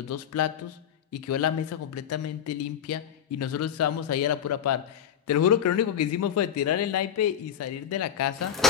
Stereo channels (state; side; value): quieter; right; 8.8 dB